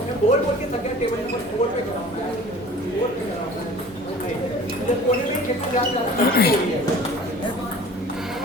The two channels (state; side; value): noise; right; hum, 27 dB below the sound